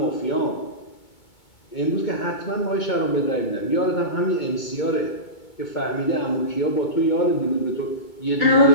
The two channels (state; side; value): late; right; 2.2 ms